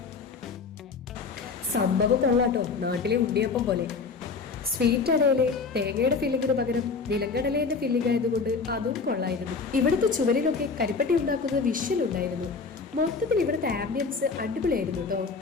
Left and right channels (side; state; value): right; quieter; 4.8 dB